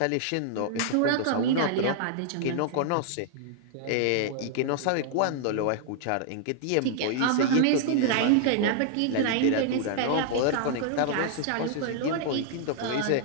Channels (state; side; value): different; both; correlation -0.01